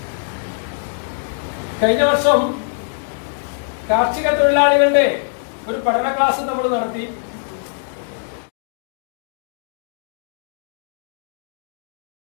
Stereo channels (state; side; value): silent; right; digital silence